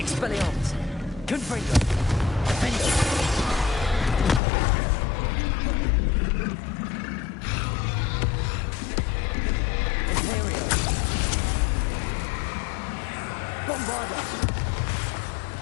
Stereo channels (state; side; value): drops out; right; at 4.4 s